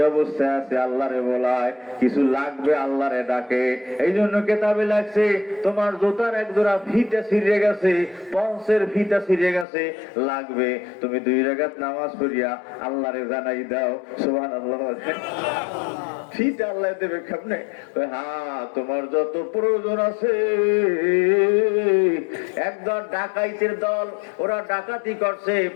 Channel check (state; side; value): drops out; right; at 9.7 s